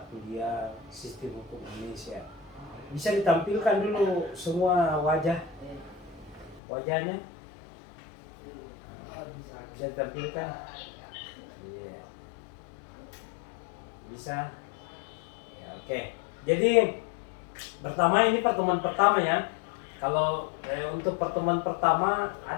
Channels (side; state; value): right; drops out; at 6.6 s